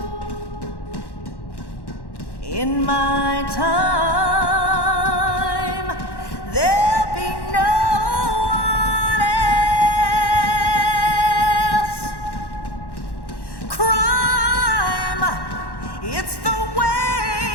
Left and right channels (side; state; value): right; late; 1.1 ms